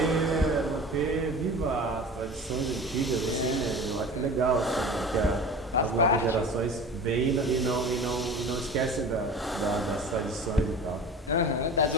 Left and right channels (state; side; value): normal; both; correlation 0.36